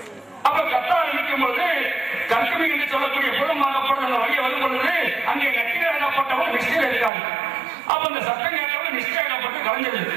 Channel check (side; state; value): left; drops out; at 7.1 s